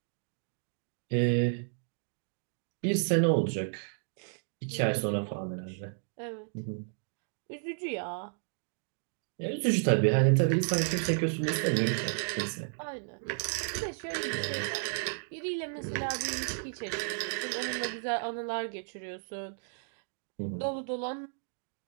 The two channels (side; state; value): left; silent; digital silence